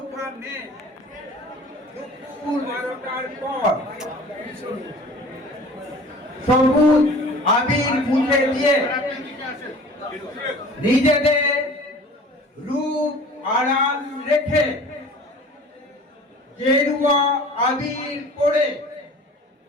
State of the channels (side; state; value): both; normal; correlation 0.45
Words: মে দুপুর 12টার পর সবুজ আবির মুছে দিয়ে নিজেদের রূপ আড়াল রেখে গেরুয়া আবির পরে